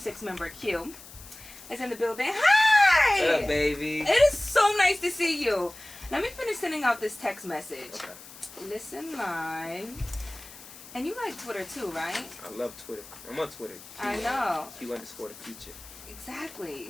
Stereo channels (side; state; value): left; noise; hiss, 18 dB below the sound